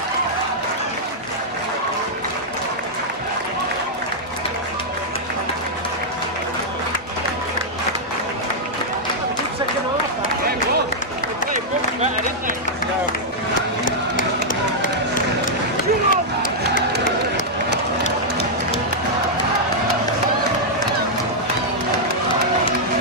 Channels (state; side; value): normal; both; correlation -0.06